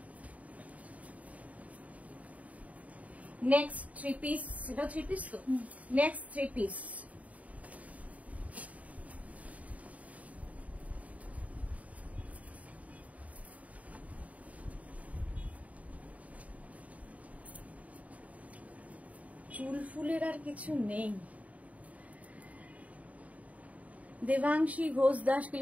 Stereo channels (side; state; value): left; late; 0.069 ms